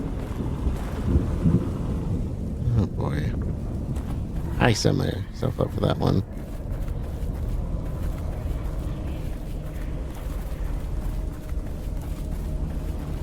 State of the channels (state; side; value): identical; both; correlation 1.00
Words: Oh boy. I set myself up for that one.